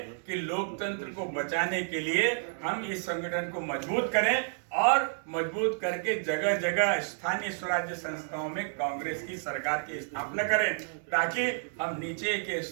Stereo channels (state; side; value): silent; left; digital silence